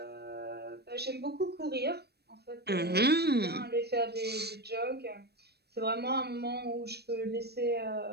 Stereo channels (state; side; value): late; left; 0.47 ms